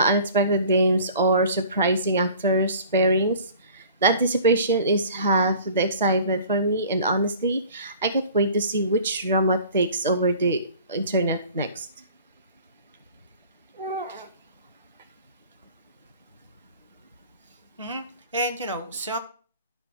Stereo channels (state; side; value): inverted; both; correlation -0.47